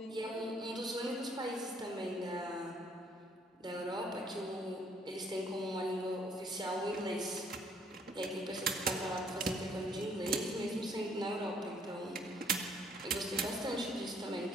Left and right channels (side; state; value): both; normal; correlation 0.64